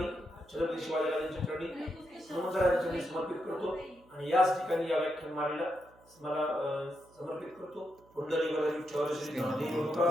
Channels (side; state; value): right; noise; hum, 29 dB below the sound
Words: छत्रपती शिवाजीराजांच्या चरणी, हनुमंतराजांच्या चरणी समर्पित करतो. आणि याच ठिकाणी या व्याख्यानमालेला मला समर्पित करतो. पुंडलिक विठ्ठल श्री ज्ञानेश्वर